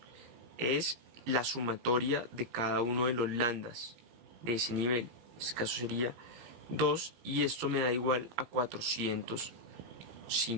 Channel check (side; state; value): left; late; 17 ms